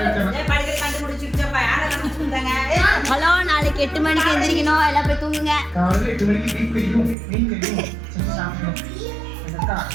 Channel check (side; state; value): left; drops out; at 7.2 s